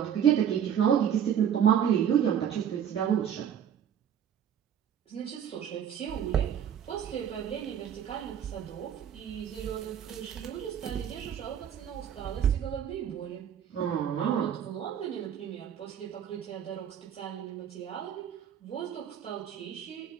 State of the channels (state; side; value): quieter; left; 9.0 dB